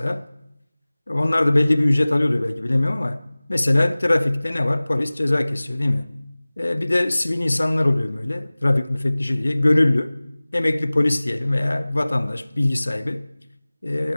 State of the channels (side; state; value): both; inverted; correlation -0.99